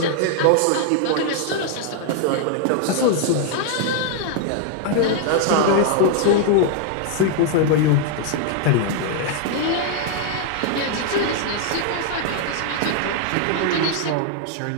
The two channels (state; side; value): different; both; correlation 0.00